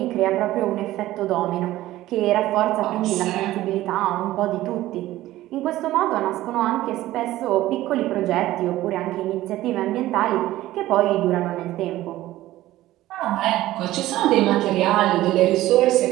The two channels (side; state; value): left; quieter; 15.6 dB